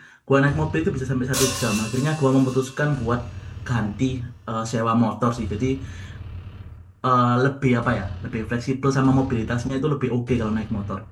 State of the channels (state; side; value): identical; both; correlation 1.00